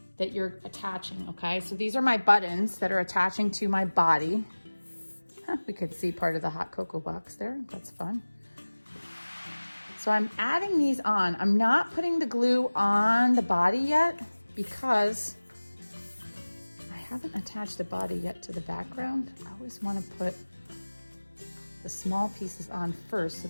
that you're attaching, okay? So these are my buttons that are attaching to my body. We could see part of the hot cocoa box there. That's fun. So I'm adding these on. I'm not putting the glue on the body yet because I haven't attached the body yet to the background. I always want to put the small pieces on first so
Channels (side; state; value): both; inverted; correlation -1.00